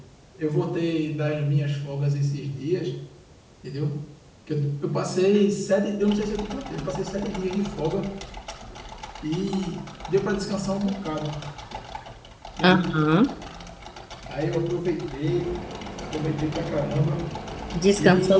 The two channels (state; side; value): identical; both; correlation 1.00